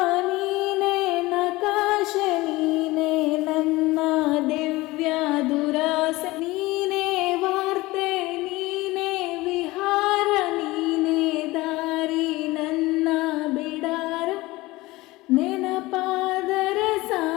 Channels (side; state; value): right; quieter; 20.2 dB